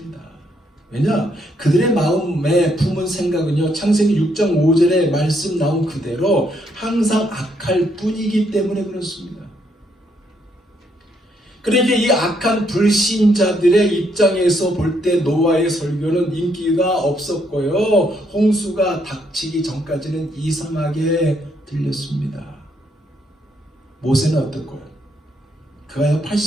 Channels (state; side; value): normal; both; correlation 0.74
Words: 왜냐? 그들의 마음에 품은 생각은요, 창세기 6장 5절에 말씀 나온 그대로 항상 악할 뿐이기 때문에 그렇습니다. 그러니까 이 악한 불신자들의 입장에서 볼 때 노아의 설교는 인기가 없었고요, 홍수가 닥치기 전까지는 이상하게 들렸습니다. 모세는 어떻고요? 그가